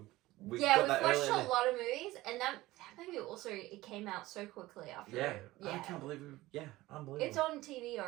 We've watched a lot of movies, and that movie also, it came out so quickly after. Yeah, I can't believe unbelievable. It's on TV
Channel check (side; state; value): left; quieter; 18.1 dB